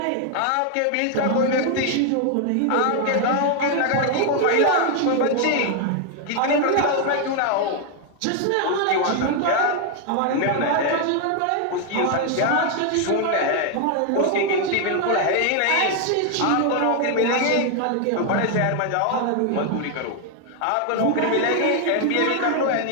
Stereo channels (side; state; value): both; different; correlation 0.01